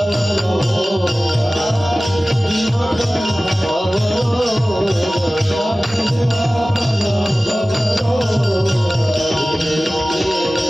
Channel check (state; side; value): normal; both; correlation 0.97